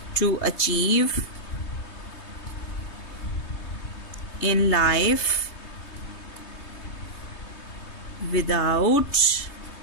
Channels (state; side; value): late; right; 3.2 ms